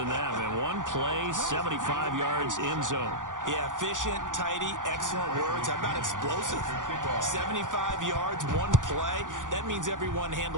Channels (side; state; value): left; late; 0.88 ms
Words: that. Man, one play, 75 yards in zone. Yeah, efficient, tidy, excellent words. How about explosive? 75 yards, one play. That means everyone